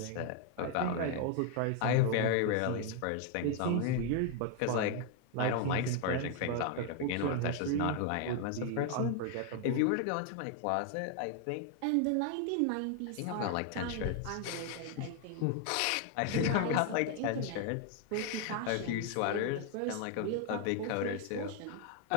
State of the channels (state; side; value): different; both; correlation 0.01